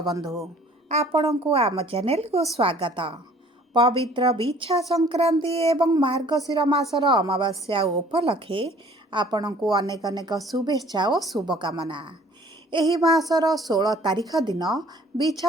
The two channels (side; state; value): both; normal; correlation 0.54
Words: बंधु आपण को आम चैनल को स्वागत। पवित्र बिछा संक्रांति एवं मार्गशीर मासर अमावास्या उपलक्षे आपण को अनेक अनेक शुभेच्छा और शुभकामना। एही मासर 16 तारिख दिन